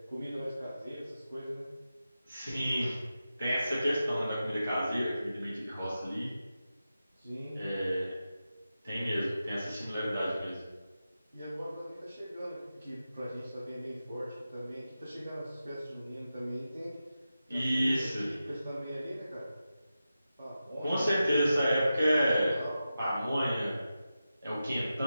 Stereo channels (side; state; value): both; inverted; correlation -0.92